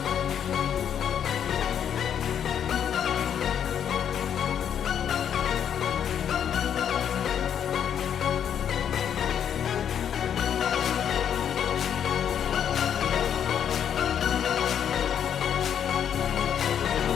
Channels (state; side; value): quieter; right; 8.9 dB